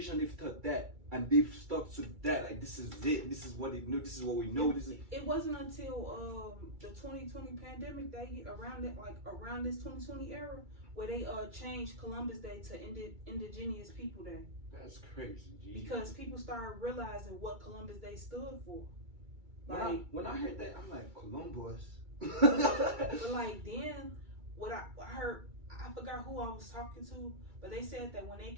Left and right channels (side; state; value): left; late; 2.3 ms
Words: they've taught that and they've stuck to that. Like, this is it. This is what they know. This is what we know. It wasn't until the 2020 pandemic around this 2020 era where they changed Columbus Day to Indigenous People Day. That's crazy, G. Because people started realizing what Columbus Day stood for. Like, when I heard that, I'm like, Columbus. But like then, what I heard, I forgot who I was talking to, but they said that when they